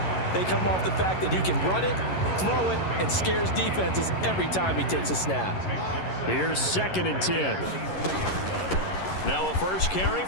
they come off the fact that he can run it, throw it, and scares defenses every time he takes a snap. Here's 2nd and 10. Now a first carry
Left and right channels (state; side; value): late; right; 11 ms